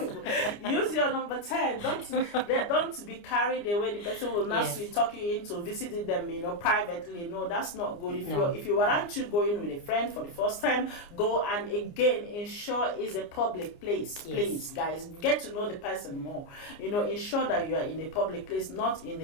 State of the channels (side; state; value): right; late; 29 ms